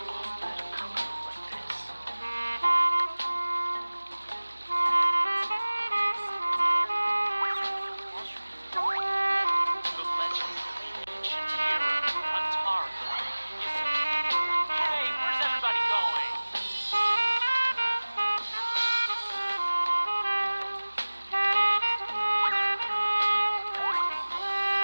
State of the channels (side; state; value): both; inverted; correlation -1.00